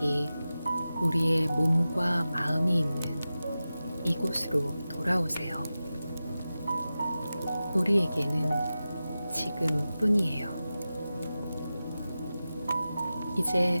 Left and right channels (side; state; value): both; inverted; correlation -0.94